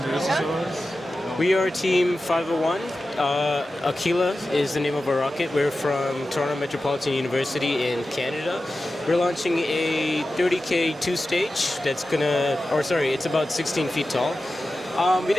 We are Team 501. Aquila is the name of our rocket. We're from Toronto Metropolitan University in Canada. We're launching a 30K 2-stage that's it's about 16 feet tall. We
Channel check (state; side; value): normal; both; correlation 0.93